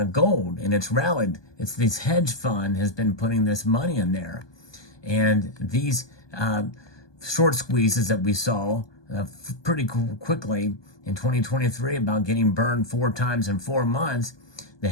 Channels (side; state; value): right; late; 1.2 ms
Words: gold, and it's rallied. It's this hedge fund has been putting this money in there. And these short squeezes that we saw pretty quickly in 2023 about getting burned 4 times in 4 months, the